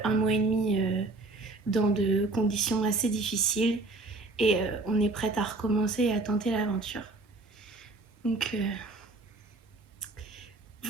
1 mois et demi dans de conditions assez difficiles et on est prête à recommencer et à tenter l'aventure. Donc,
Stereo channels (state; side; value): quieter; left; 3.2 dB